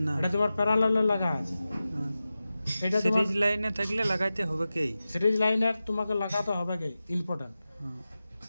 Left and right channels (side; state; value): both; inverted; correlation -0.94